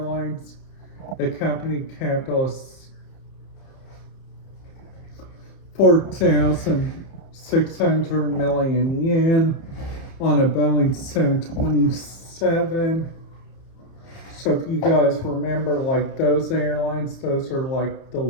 The company capital is 4,600 million yen on a Boeing 727. So if you guys remember, like those airlines, those are like the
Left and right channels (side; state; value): right; late; 30 ms